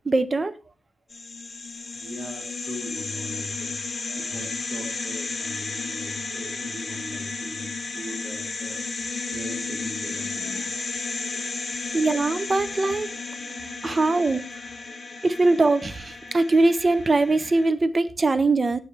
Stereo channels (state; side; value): normal; both; correlation 0.92